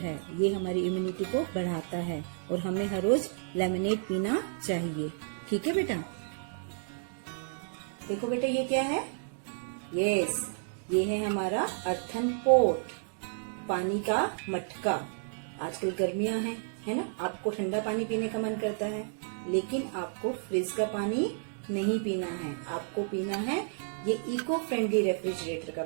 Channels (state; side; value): silent; left; digital silence